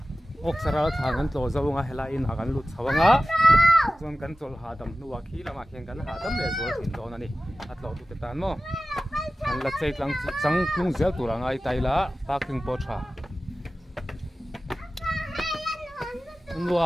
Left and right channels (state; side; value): normal; both; correlation 0.96